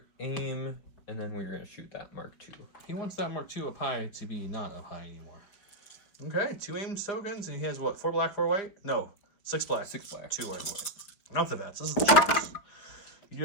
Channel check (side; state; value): right; late; 5.2 ms